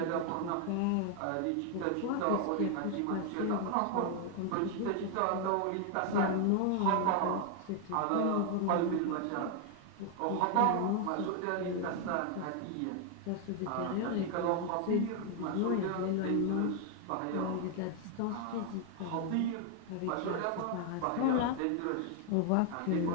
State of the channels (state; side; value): different; both; correlation 0.00